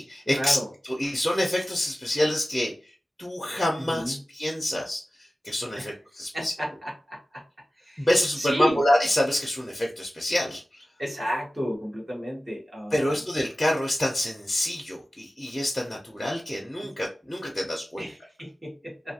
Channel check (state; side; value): normal; both; correlation 0.96